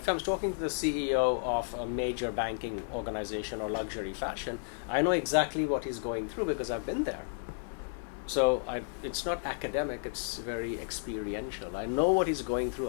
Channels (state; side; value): silent; right; 56 dB below the other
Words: I'm talking to the CEO of a major banking organization or luxury fashion, I know exactly what he's going through because I've been there. So it's not academic, it's very experiential. I know what he's going through.